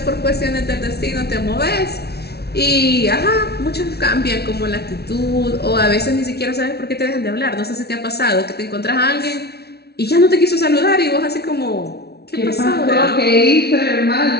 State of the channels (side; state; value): right; late; 0.47 ms